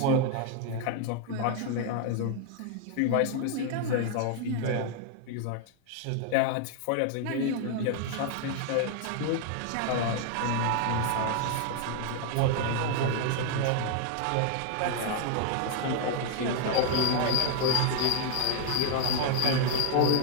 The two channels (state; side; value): different; both; correlation 0.00